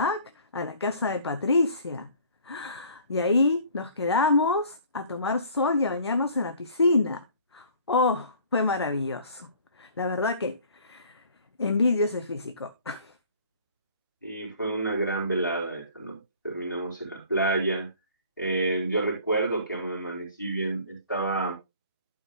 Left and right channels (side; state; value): both; inverted; correlation -0.52